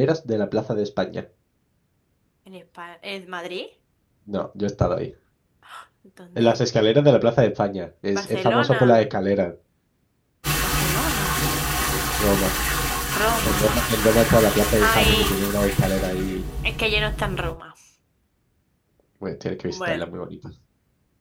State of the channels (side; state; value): both; identical; correlation 1.00